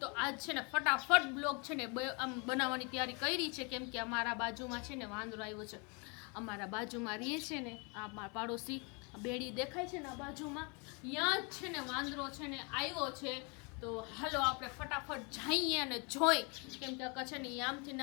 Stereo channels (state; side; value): quieter; right; 32.8 dB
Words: आज छे ने फटाफट ब्लॉग छे ने आम बनाववानी तैयारी करी छे केम के अमारा बाजुमां छे ने वांदरो आव्यो छे अमारा बाजुमां रहीए छे ने आ मारा पाड़ोशी बेड़ी देखाय छे ने बाजुमां यां ज छे ने वांदरो छे ने आव्यो छे तो हालो आपणे फटाफट जाईए अने जोई केम के आ छे ने आमथी